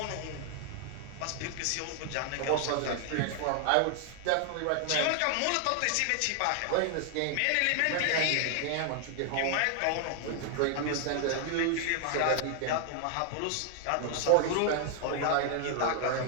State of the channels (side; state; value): both; different; correlation 0.00